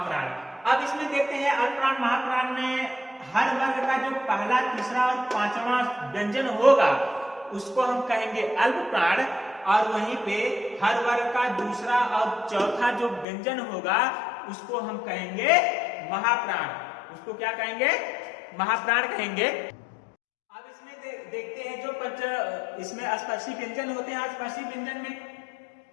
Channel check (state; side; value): drops out; right; at 13.2 s